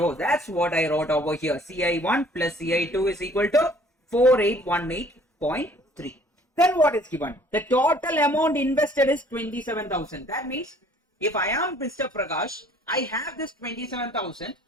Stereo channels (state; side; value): normal; both; correlation 0.56